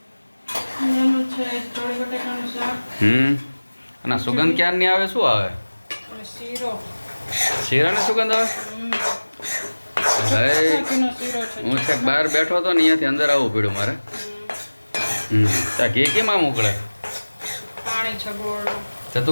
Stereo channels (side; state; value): both; inverted; correlation -1.00